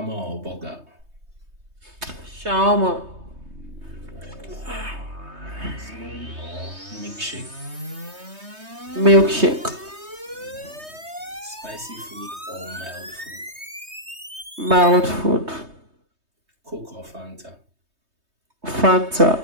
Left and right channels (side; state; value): left; late; 3.2 ms